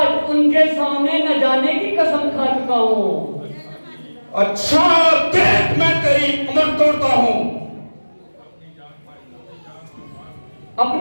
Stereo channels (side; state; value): both; inverted; correlation -1.00